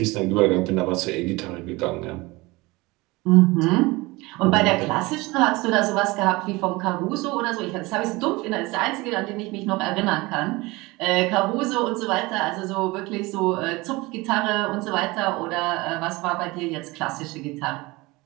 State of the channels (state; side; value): quieter; left; 22.6 dB